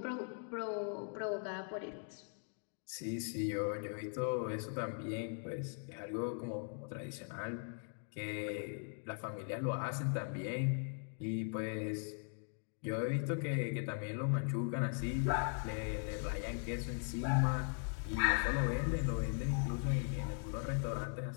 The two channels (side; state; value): right; silent; 51 dB below the other